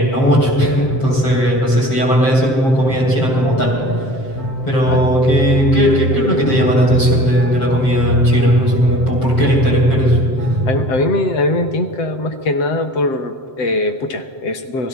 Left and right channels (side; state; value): right; late; 7.7 ms